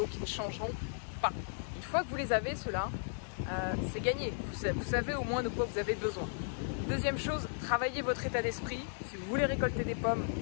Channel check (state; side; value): silent; right; 54 dB below the other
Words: qui ne changeront pas. Une fois que vous les avez, ceux-là, c'est gagné. Vous savez au moins de quoi vous avez besoin. Deuxième chose, travaillez votre état d'esprit. Si vous voulez récolter des pommes,